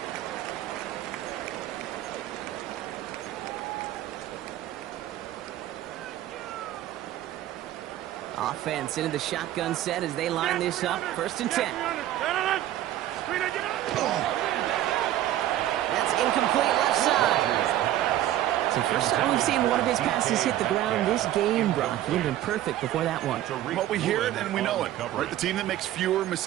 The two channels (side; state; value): left; quieter; 13.3 dB